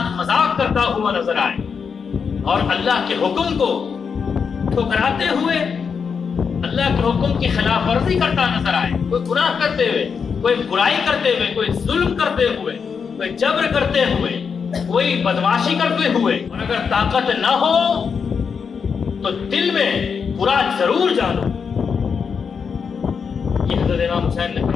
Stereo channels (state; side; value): quieter; right; 6.1 dB